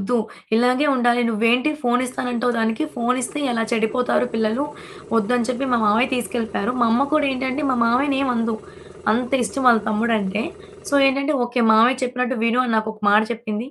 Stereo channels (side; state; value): both; identical; correlation 1.00